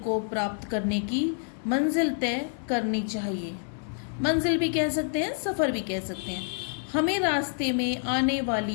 को प्राप्त करने की मंजिल तय करनी चाहिए। मंजिल भी कह सकते हैं, सफ़र भी कह सकते हैं। हमें रास्ते में आने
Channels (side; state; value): right; silent; 59 dB below the other